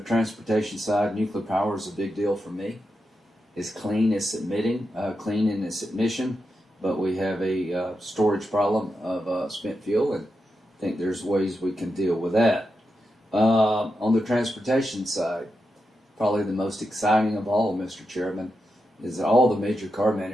side, nuclear power is a big deal for me. It's clean, it's clean in its emission, but we have a storage problem of spent fuel, and I think there's ways we can deal with that. On the transportation side, probably the most exciting of all, Mr. Chairman, is that all the major car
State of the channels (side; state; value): both; normal; correlation 0.87